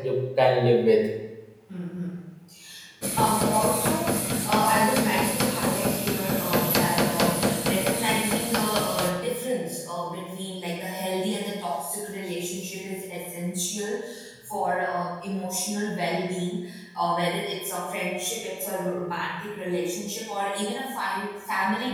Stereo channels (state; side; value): identical; both; correlation 1.00